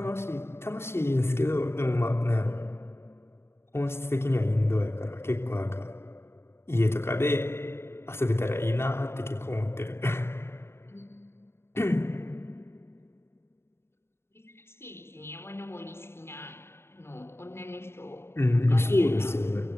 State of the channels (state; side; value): late; right; 0.12 ms